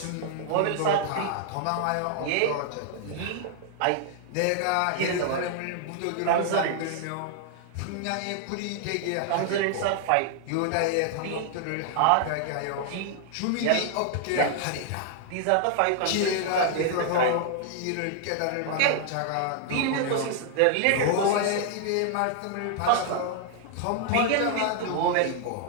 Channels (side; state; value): both; different; correlation 0.00